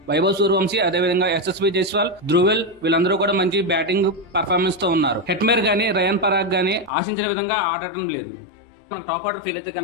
వైభవ్ సూర్యవంశీ అదేవిధంగా ఎస్ఎస్వి జైస్వాల్, ధ్రువెల్ వీళ్ళందరూ కూడా మంచి బ్యాటింగ్ పర్ఫార్మెన్స్ తో ఉన్నారు. హెట్మేర్ గానీ రయాన్ పరాగ్ గానీ ఆశించిన విధంగా ఆడటం లేదు. మనకు టాప్ ఆర్డర్ ఫీల్ అయితే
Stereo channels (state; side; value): drops out; right; at 6.9 s